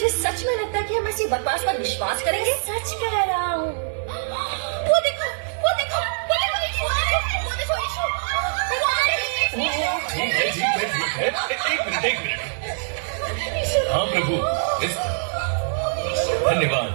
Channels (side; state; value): left; silent; digital silence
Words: सच में लगता है कि हम ऐसी बकवास पर विश्वास करेंगे? सच कह रहा हूँ। वो देखो, वो देखो, वो देखो यीशु, वो देखो यीशु। ठीक है। एक मिनट। हाँ प्रभु, धन्यवाद।